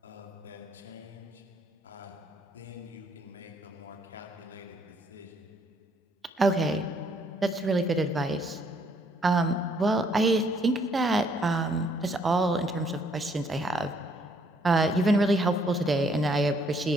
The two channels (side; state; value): both; normal; correlation 0.68